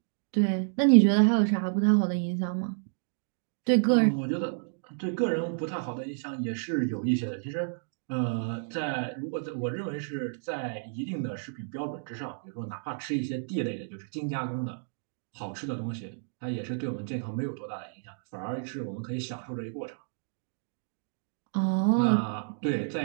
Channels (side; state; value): left; silent; digital silence